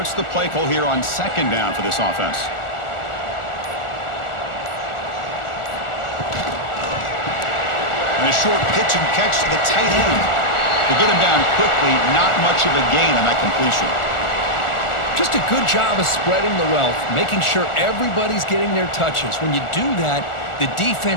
the play call here on second down for this offense? And a short pitch and catch to the tight end. To get him down quickly, not much of a gain on that completion. Just a good job of spreading the wealth, making sure everybody's getting their touches. When you do that, the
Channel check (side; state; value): right; late; 1.4 ms